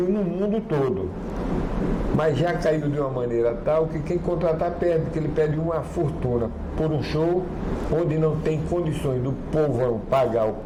no mundo todo. Mas já caiu de uma maneira tal que quem contratar perde, porque ele pede uma fortuna por um show onde não tem condições do povão pagar o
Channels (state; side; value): identical; both; correlation 1.00